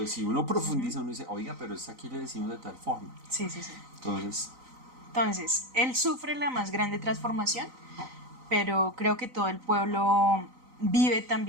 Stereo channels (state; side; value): late; left; 3.9 ms